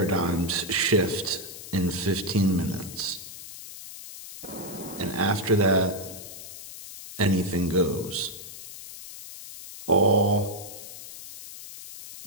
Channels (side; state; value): left; noise; hiss, 13 dB below the sound